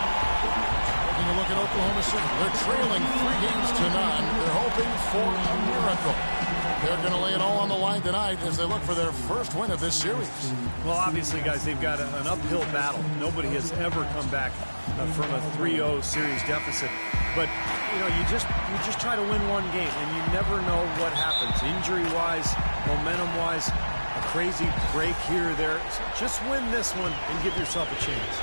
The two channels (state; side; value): inverted; both; correlation -1.00